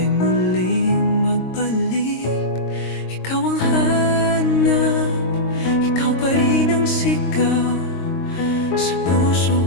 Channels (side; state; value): right; late; 22 ms